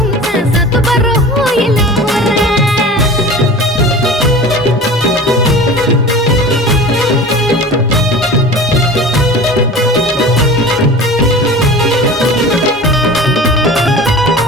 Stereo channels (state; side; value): normal; both; correlation 0.37